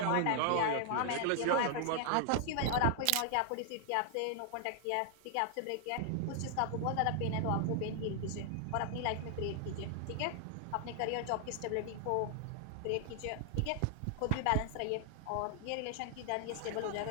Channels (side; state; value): both; different; correlation 0.00